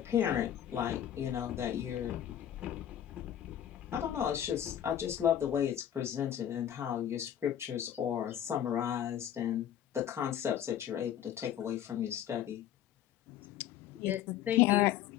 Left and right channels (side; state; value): right; quieter; 10.5 dB